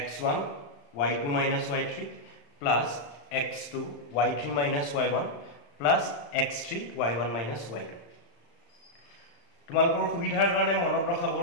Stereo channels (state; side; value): late; right; 35 ms